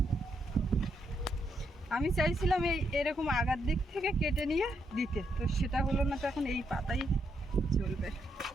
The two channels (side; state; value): both; normal; correlation 0.78